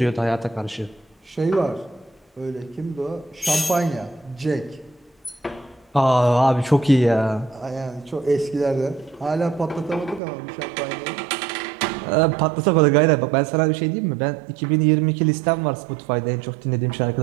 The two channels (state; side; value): drops out; left; at 10.2 s